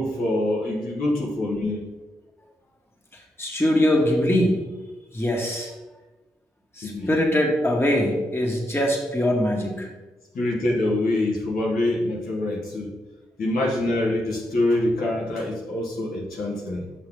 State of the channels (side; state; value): both; normal; correlation 0.82